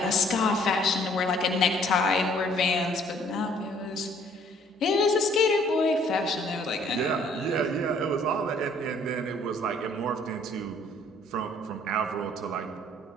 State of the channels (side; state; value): both; normal; correlation 0.60